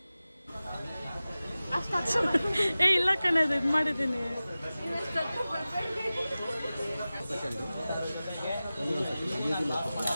ಏ ಇಲ್ಲ ಕಣದು, ಇದು ಮಾಡಿದ್ದೀನಿ.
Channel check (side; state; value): both; inverted; correlation -0.96